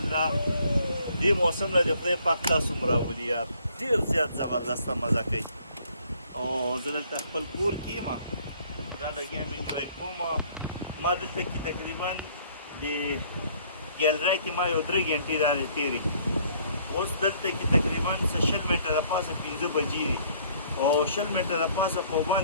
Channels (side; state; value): both; inverted; correlation -0.61